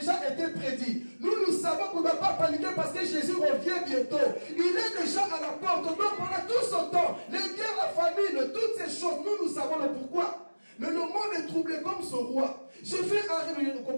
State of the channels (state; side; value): inverted; both; correlation -1.00